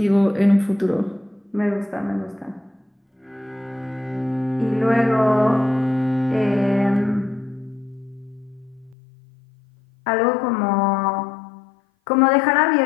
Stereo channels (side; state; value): right; drops out; at 9.0 s